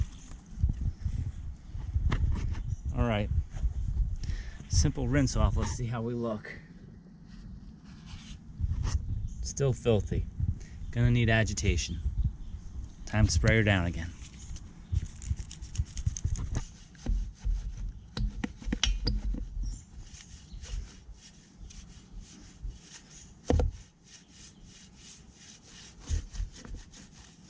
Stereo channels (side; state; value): both; identical; correlation 1.00